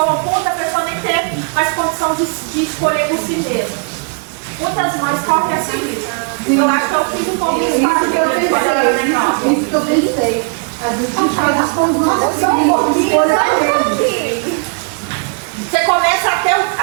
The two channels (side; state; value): left; quieter; 38.2 dB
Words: ao ponto da pessoa nem ter mais condição de escolher por si mesma. Muitas mães correm a seguir. Eu acho que eu fiz um pouco isso quando eu era menor. Isso que eu pensei. Às vezes a gente faz isso com os nossos filhos. Você começa a